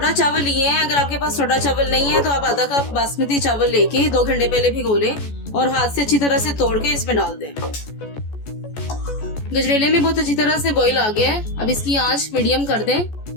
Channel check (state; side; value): late; right; 14 ms